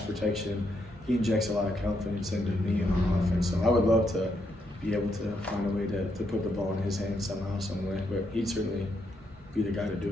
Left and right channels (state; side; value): normal; both; correlation 0.78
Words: He injects a lot of confidence into me and our offense. So I would love to be able to find a way to put the ball in his hands somehow, some way. But he'd certainly be the guy to do